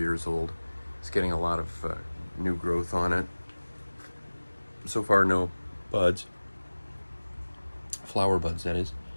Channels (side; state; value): both; inverted; correlation -1.00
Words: old, is getting a lot of new growth on it. So far no buds, flower buds that is,